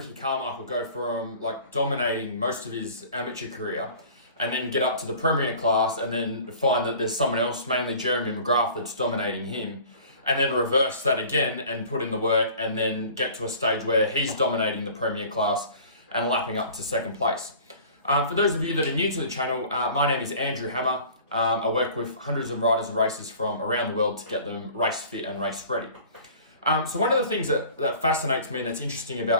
Carmichael go from like dominating most of his amateur career and then get up to the premier class and then find that there's someone else, mainly Jeremy McGrath, that's dominating him, and then reverse that again and put in the work and then get to a stage where he's dominating the premier class and lapping up to second place? For those of you that are new to the channel, my name is Andrew Hammer. I work with hundreds of riders and racers from around the world to get them race fit and race ready. So one of the things that fascinates me and that's interesting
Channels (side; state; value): both; inverted; correlation -0.46